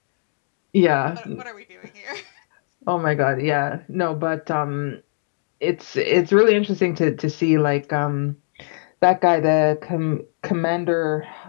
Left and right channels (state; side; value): silent; right; digital silence